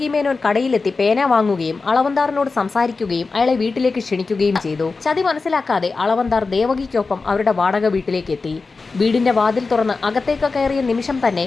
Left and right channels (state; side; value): quieter; right; 4.1 dB